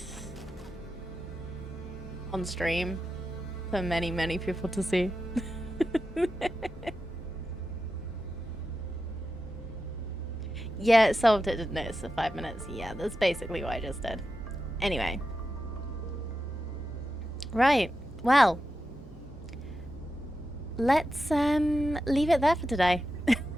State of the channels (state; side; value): normal; both; correlation 0.90